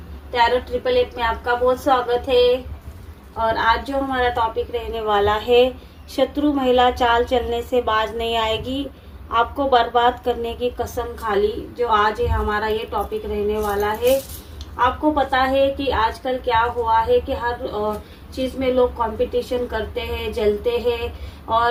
tarot 888 में आपका बहुत स्वागत है। और आज जो हमारा टॉपिक रहने वाला है, शत्रु महिला चाल चलने से बाज नहीं आएगी, आपको बर्बाद करने की कसम खा ली। जो आज है हमारा ये टॉपिक रहने वाला है। आपको पता है कि आजकल क्या हुआ है कि हर चीज में लोग कंपटीशन करते हैं, जलते हैं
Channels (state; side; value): identical; both; correlation 1.00